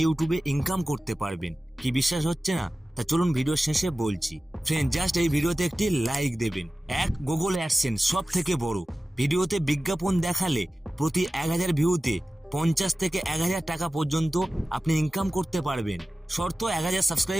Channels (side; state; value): both; normal; correlation 0.96